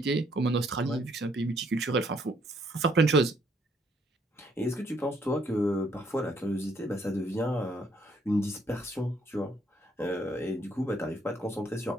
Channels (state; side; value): normal; both; correlation 0.68